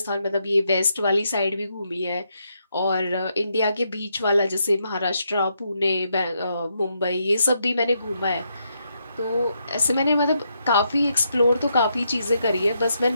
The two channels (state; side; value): inverted; both; correlation -0.79